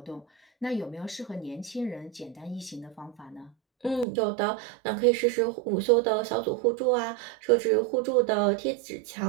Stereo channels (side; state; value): left; drops out; at 4.0 s